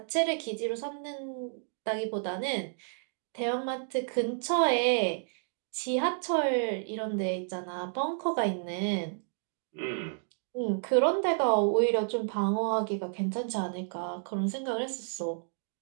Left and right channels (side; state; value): left; silent; digital silence